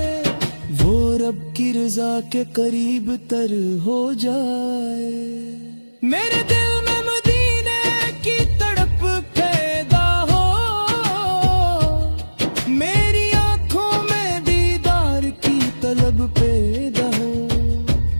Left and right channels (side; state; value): both; inverted; correlation -1.00